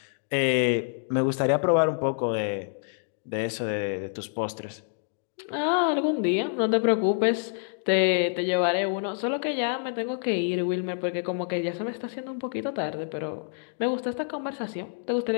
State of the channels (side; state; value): right; silent; digital silence